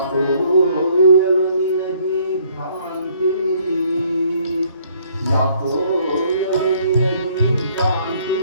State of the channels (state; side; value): inverted; both; correlation -0.63